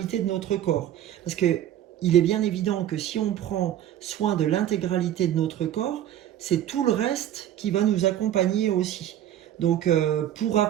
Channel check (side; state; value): left; quieter; 11.5 dB